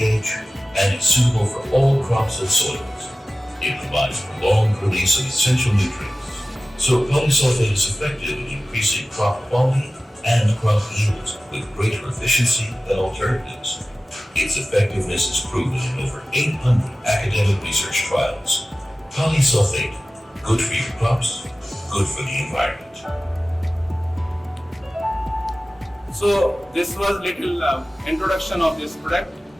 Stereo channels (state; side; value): normal; both; correlation 0.97